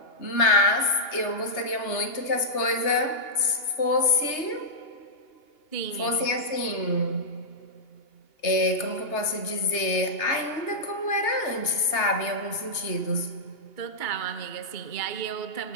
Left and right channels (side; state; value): right; late; 2.8 ms